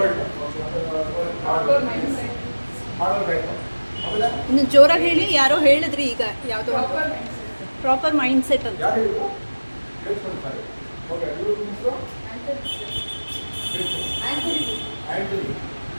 ಇನ್ನು ಜೋರಾಗಿ ಹೇಳಿ. ಯಾರೋ ಹೇಳಿದ್ರಿ ಈಗ ಯಾವುದೋ ಪ್ರಾಪರ್ ಮೈಂಡ್ ಸೆಟ್ ಅಂತ.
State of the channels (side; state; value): both; inverted; correlation -1.00